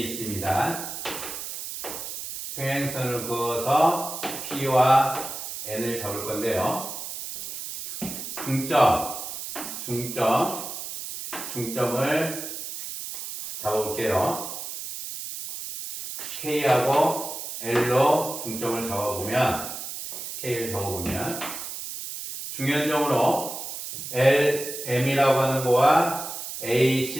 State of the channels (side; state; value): right; noise; hiss, 8 dB below the sound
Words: 있습니다. 평행선을 그어서 P와 N을 잡을 건데요. 중점을 잡아볼게요. K하고 L로 중점을 잡아보면, K를 잡아보면, 중연점으로 LM이라고 하는 거와